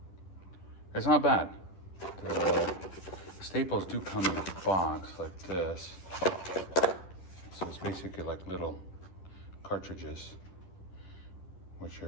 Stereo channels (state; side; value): late; right; 11 ms